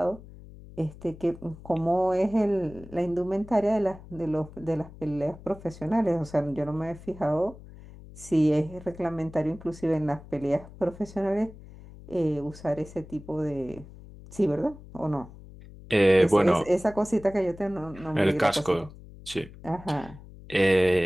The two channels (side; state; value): left; noise; hum, 18 dB below the sound